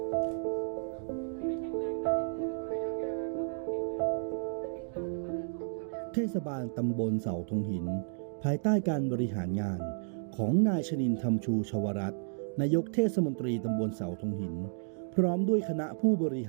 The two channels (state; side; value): silent; left; digital silence